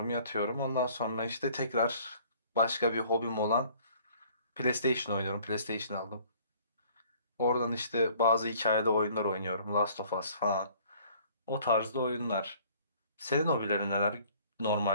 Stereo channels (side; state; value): both; inverted; correlation -0.55